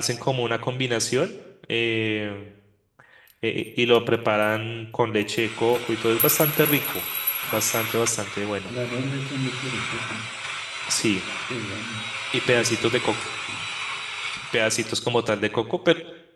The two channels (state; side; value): identical; both; correlation 1.00